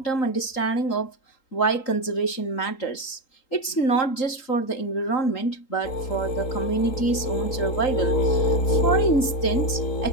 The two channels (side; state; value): right; late; 3.8 ms